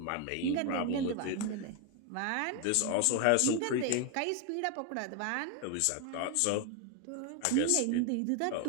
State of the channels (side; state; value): both; different; correlation 0.01